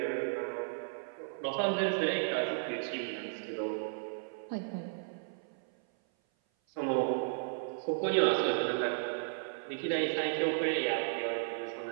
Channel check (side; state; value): left; silent; 55 dB below the other